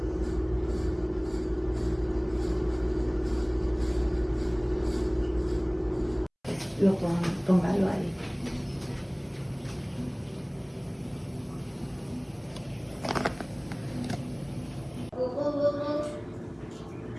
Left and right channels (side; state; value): both; identical; correlation 1.00